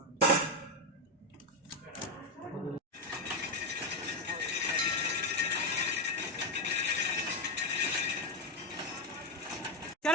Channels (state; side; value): normal; both; correlation 0.08